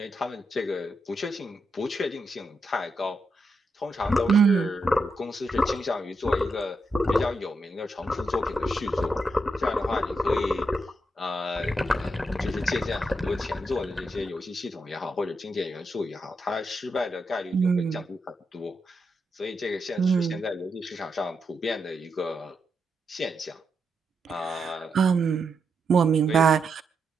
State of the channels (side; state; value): both; normal; correlation 0.83